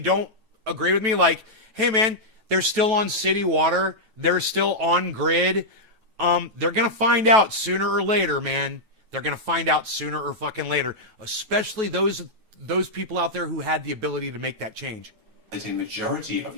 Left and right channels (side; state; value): left; late; 9.2 ms